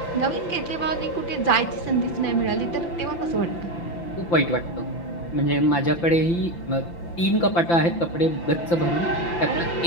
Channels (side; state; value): right; late; 5.9 ms